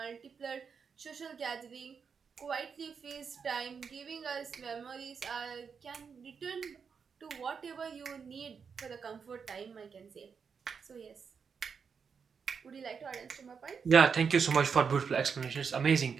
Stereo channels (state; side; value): quieter; left; 6.1 dB